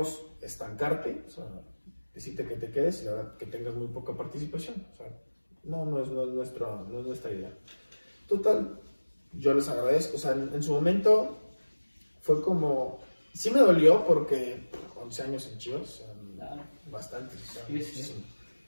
estancarte, o sea, decirte que te quedes y la verdad que tengas muy poca participación. O sea, no es nuestra idea. Total, yo les agradezco. O sea, en su momento fue como, sí me dolió porque 11 años en Chivas, o sea, bastantes. O sea, sí.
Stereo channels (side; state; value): both; inverted; correlation -1.00